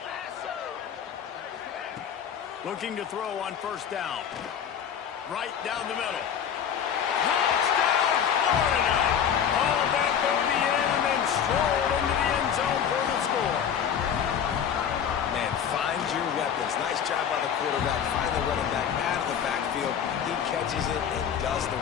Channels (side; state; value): right; quieter; 8.3 dB